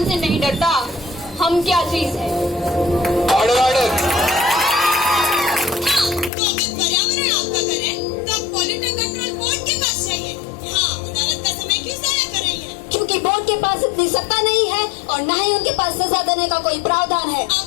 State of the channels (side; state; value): right; drops out; at 6.3 s